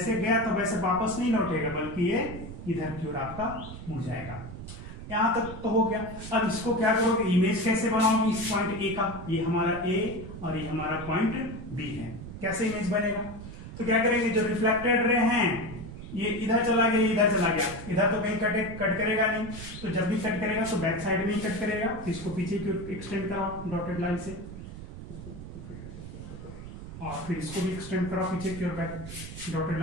गया तो वैसे वापस नहीं लौटेगा, बल्कि ये इधर की ओर आपका मुड़ जाएगा। यहां तक तो हो गया। अब इसको क्या करोगे, इमेज कैसे बनाओगे इस पॉइंट ए का, ये हमारा ए और ये हमारा पॉइंट बी है, कैसे इमेज बनेगा। तो क्या करेंगे, जो रिफ्लेक्टेड रे हैं ये इधर चला गया, इधर चला गया, इधर तो कहीं कट करेगा नहीं, तो जब भी कट करेगा तो बैक साइड में ही कट करेगा, तो इसको पीछे की ओर एक्सटेंड कराओ डॉटेड लाइन से, और फिर इसको भी एक्सटेंड कराओ पीछे की ओर बैक डॉटेड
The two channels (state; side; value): noise; right; rumble, 11 dB below the sound